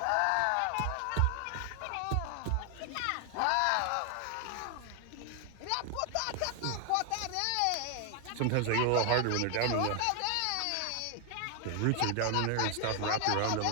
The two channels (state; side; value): different; both; correlation 0.00